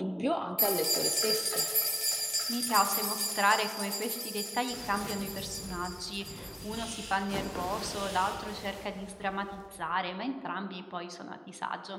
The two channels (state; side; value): identical; both; correlation 1.00